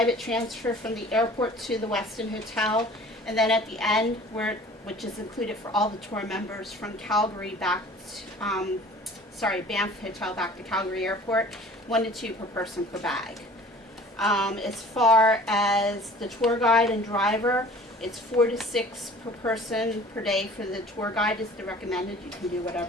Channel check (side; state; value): both; normal; correlation 0.47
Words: transfer from the airport to the Westin Hotel, and then at the end, which is included for all the tour members from Calgary back Banff Hotel back to Calgary Airport, 1 to 2 per person per bag. As far as the tour guide and driver, it's 4 to 6 per person per day for the tour guide is the recommended. You can do